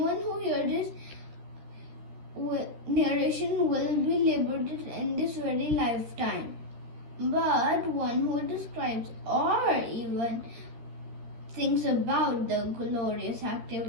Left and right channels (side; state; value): left; late; 13 ms